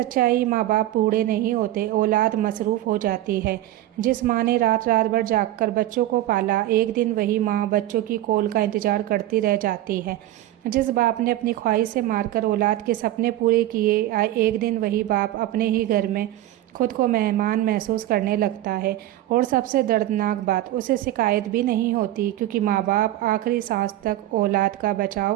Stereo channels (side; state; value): left; quieter; 14.3 dB